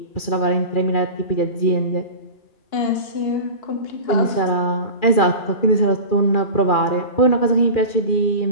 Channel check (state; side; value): late; right; 2.4 ms